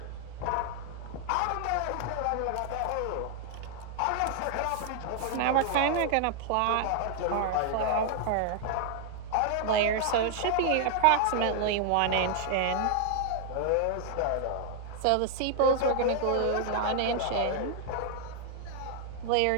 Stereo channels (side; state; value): both; different; correlation 0.00